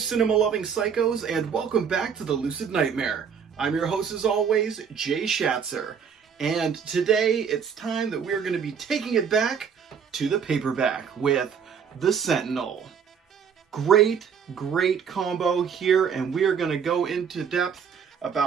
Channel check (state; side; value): quieter; left; 7.0 dB